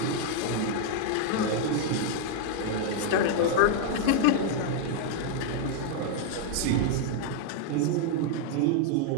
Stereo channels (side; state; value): both; different; correlation 0.00